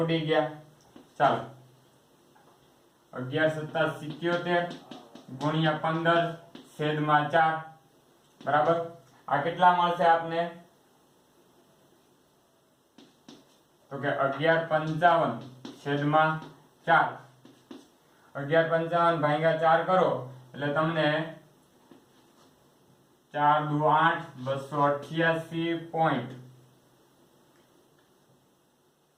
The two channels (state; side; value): identical; both; correlation 1.00